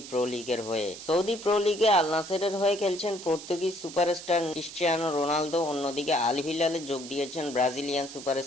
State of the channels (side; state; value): right; noise; hiss, 13 dB below the sound